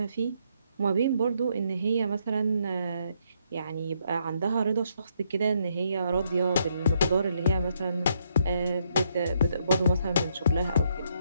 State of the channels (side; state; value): both; inverted; correlation -0.74